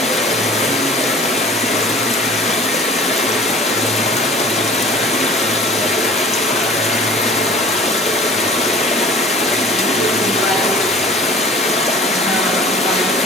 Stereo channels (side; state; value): both; normal; correlation 0.45